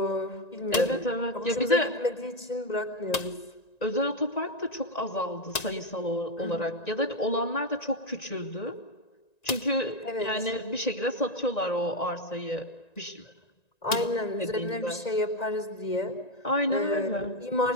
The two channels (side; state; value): right; late; 1.9 ms